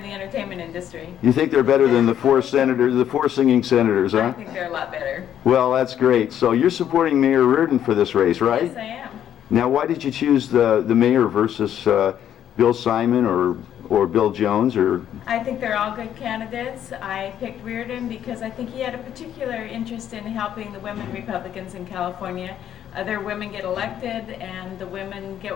the entertainment industry. You think they're better than the four singing senators, huh? I think they're a lot better. Well, that's great. So you're supporting Mayor Riordan for this race, right? Yes, I am. Now, why did you choose the mayor versus Bill Simon or Bill Jones or? I think they're all good candidates. I picked Riordan because I think he had a particular interest in helping the women Republicans in California. Other women get elected and the women get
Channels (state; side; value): quieter; right; 10.3 dB